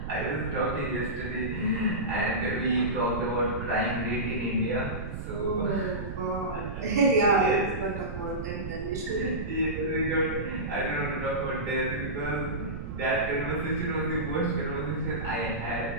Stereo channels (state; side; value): noise; right; rumble, 7 dB below the sound